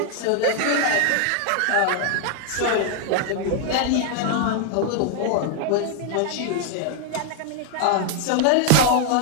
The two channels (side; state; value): both; different; correlation 0.00